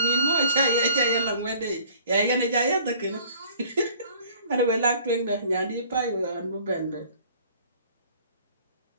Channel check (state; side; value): inverted; both; correlation -0.53